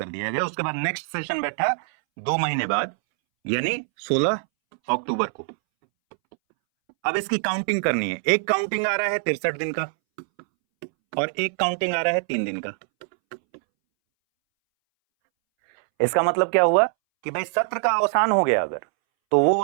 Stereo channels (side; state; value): left; silent; 63 dB below the other